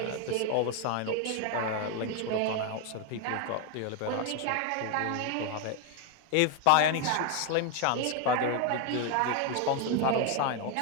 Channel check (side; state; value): both; different; correlation 0.01